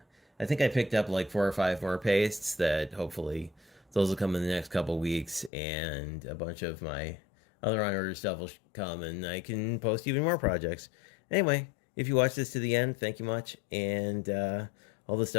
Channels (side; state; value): right; drops out; at 5.5 s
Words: I think I picked up like 4 or 5 more pastes that hopefully those will come in the next couple weeks, and a bunch of my other on order stuff will come, and I can post even more projects. Anyway, if you watch this to the end, thank you much. And all the